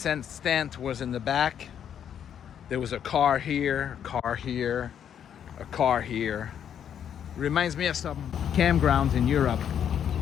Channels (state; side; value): quieter; right; 8.9 dB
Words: tent was in the back. There was a car here, a car here, a car here. Reminds me of some campgrounds in Europe